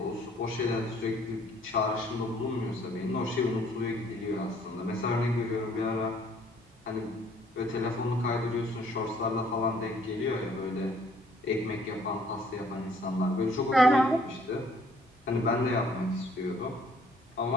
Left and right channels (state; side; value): normal; both; correlation 0.61